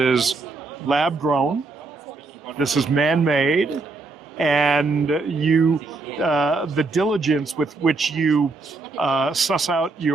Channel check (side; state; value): left; quieter; 3.6 dB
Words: lab grown, this is man-made, and you the diligence with which you suss out